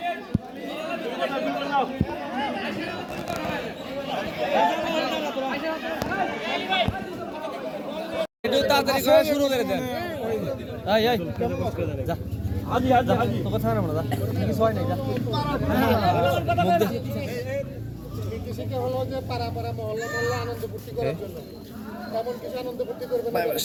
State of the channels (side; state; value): both; identical; correlation 1.00